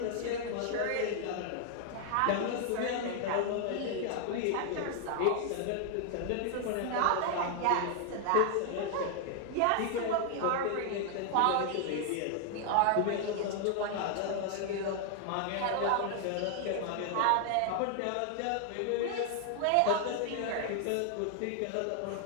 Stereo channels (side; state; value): both; different; correlation 0.00